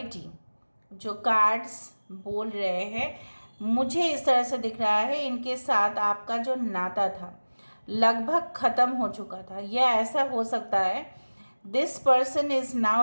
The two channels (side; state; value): both; inverted; correlation -1.00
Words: जो कार्ड्स बोल रहे हैं मुझे इस तरह से दिख रहा है, इनके साथ आपका जो नाता था लगभग ख़त्म हो चुका था। यह ऐसा हो सकता है this person is